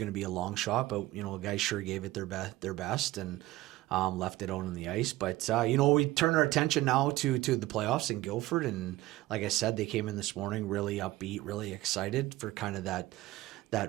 to be a long shot. But guys sure gave it their best and left it out on the ice. But we turn our attention now to the playoffs in Guilford, and like I said, they came in this morning really upbeat, really excited for kind of that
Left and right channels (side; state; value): left; quieter; 17.5 dB